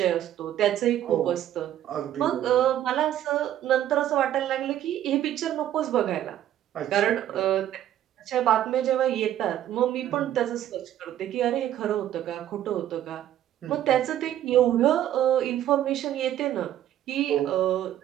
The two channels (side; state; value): left; quieter; 11.8 dB